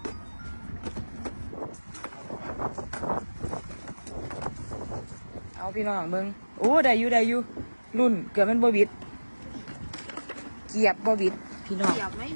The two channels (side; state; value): both; inverted; correlation -1.00